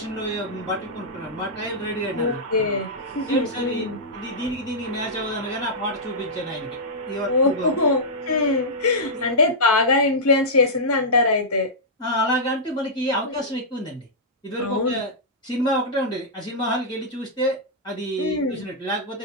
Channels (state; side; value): normal; both; correlation -0.11